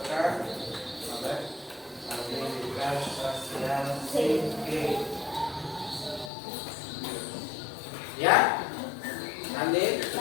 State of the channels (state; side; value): drops out; right; at 6.3 s